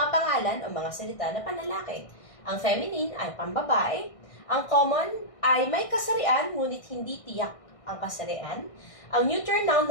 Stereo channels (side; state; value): right; late; 1.6 ms